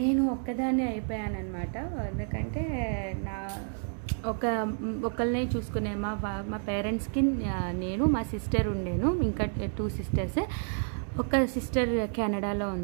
ఒక్కదాన్నే అయిపోయానమాట. ఎందుకంటే నా ఒకళ్ళనే చూసుకునే మా పేరెంట్స్కి నేను, మా సిస్టర్ ఉండేను, ఇంకా 2 సిస్టర్స్. ఒక సిస్టర్ కెనడాలో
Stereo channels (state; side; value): silent; left; 58 dB below the other